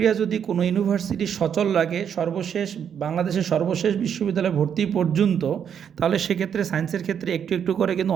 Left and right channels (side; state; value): left; quieter; 8.2 dB